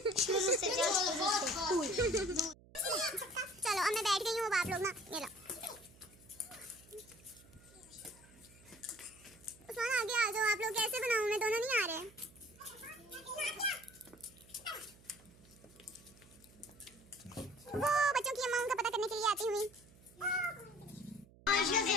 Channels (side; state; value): right; noise; hum, 24 dB below the sound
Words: चलो अब मैं बैठ गई हूँ, अब आप लोग ना ये लो। कैसे बनाऊं मैं, दोनों नहीं आ रहे। वो बच्चों की अम्मा उनका पता करने के लिए आती हुई। आयशा से